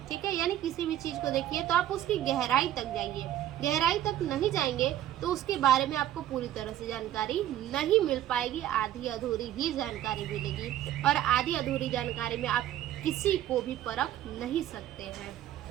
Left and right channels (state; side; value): quieter; left; 12.3 dB